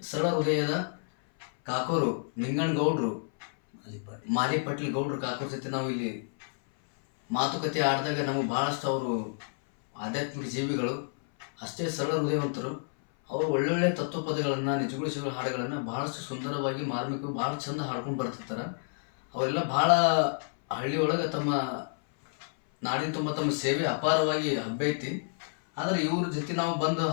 ಸರಳ ಹೃದಯದ ಕಾಕೋರು ನಿಂಗಣ್ಣಗೌಡರು, ಮಾಲಿ ಪಾಟೀಲ್ ಗೌಡ್ರು ಕಾಕೋರ ಜೊತೆ ನಾವು ಇಲ್ಲಿ ಮಾತುಕತೆ ಆಡಿದಾಗ ನಮಗೆ ಭಾಳಷ್ಟು ಅವರು ಆಧ್ಯಾತ್ಮಿಕ ಜೀವಿಗಳು, ಅಷ್ಟೇ ಸರಳ ಹೃದಯವಂತರು. ಅವರು ಒಳ್ಳೊಳ್ಳೆ ತತ್ವಪದಗಳನ್ನು, ನಿಜಗುಳಿಸುವ ಹಾಡುಗಳನ್ನು ಭಾಳಷ್ಟು ಸುಂದರವಾಗಿ, ಮಾರ್ಮಿಕವಾಗಿ ಭಾಳ ಚಂದ ಹಾಡ್ಕೊಂಡು ಬರ್ತಿರ್ತಾರೆ. ಅವರೆಲ್ಲ ಭಾಳ ಹಳ್ಳಿಯೊಳಗೆ ತಮ್ಮ ನಾಡಿನ ತುಂಬ ತಮ್ಮ ಸೇವೆ ಅಪಾರವಾಗಿ ಹಬ್ಬೈತಿ. ಆದರೆ ಇವ್ರ ಜೊತೆ ನಾವು ಬಂದು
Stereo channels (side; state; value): right; silent; 58 dB below the other